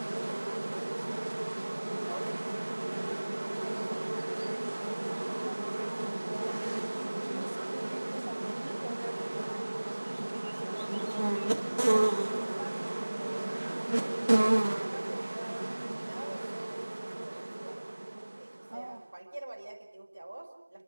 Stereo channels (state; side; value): inverted; both; correlation -1.00